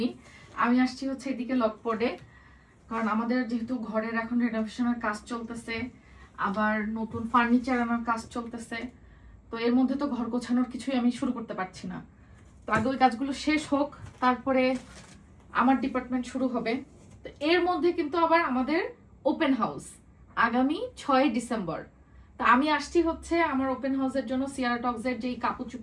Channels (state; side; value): identical; both; correlation 1.00